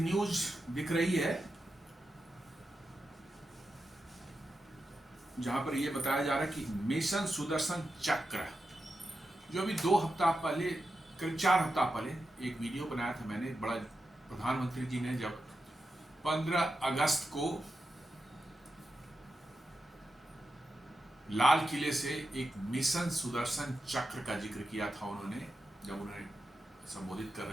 दिख रही है जहां पर यह बताया जा रहा है कि मिशन सुदर्शन चक्र, जो अभी 2 हफ्ता पहले, करीब 4 हफ्ता पहले एक वीडियो बनाया था मैंने, बड़ा प्रधानमंत्री जी ने जब 15 अगस्त को लाल किले से एक मिशन सुदर्शन चक्र का जिक्र किया था उन्होंने, जब उन्हें संबोधित कर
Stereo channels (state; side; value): normal; both; correlation 0.89